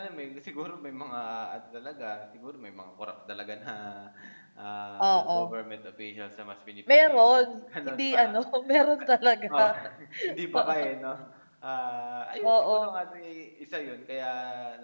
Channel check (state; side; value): inverted; both; correlation -1.00